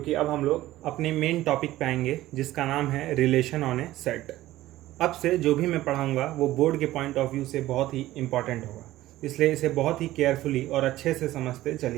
अब हम लोग अपने मेन टॉपिक पे आएंगे जिसका नाम है रिलेशन ऑन ए सेट। अब से जो भी मैं पढ़ाऊँगा वो बोर्ड के पॉइंट ऑफ व्यू से बहुत ही इंपॉर्टेंट होगा, इसलिए इसे बहुत ही केयरफुली और अच्छे से समझते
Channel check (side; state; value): left; quieter; 15.7 dB